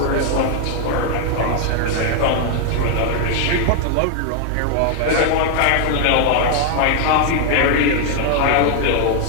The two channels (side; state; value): both; different; correlation 0.00